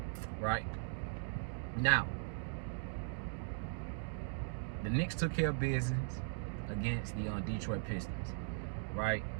Right? Now, the Knicks took care of business against the Detroit Pistons. Right?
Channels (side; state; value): left; silent; digital silence